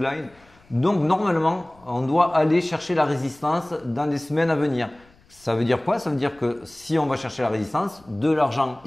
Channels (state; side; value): noise; left; rumble, 29 dB below the sound